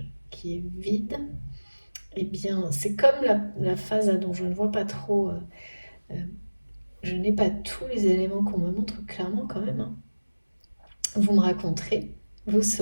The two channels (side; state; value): both; inverted; correlation -1.00